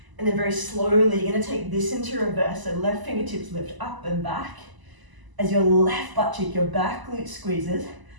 And then very slowly, you're gonna take this into reverse, so left fingertips lift up and back. As your left butt cheek, your back glute squeezes,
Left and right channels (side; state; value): left; late; 1.0 ms